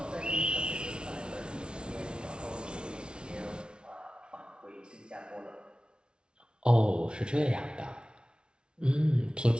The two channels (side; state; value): left; late; 0.056 ms